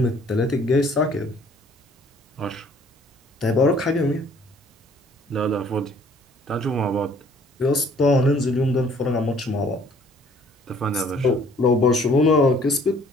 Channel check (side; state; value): both; normal; correlation 0.58